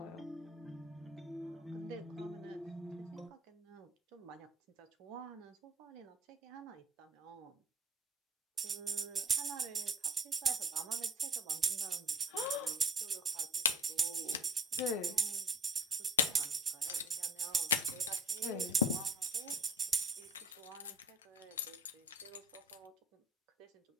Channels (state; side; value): normal; both; correlation 0.47